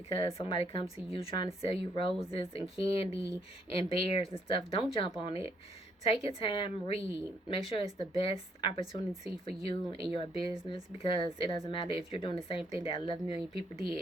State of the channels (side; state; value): both; normal; correlation 0.70